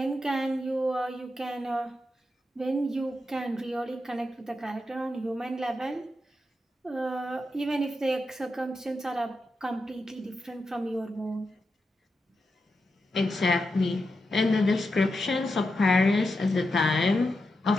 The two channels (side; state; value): both; normal; correlation 0.87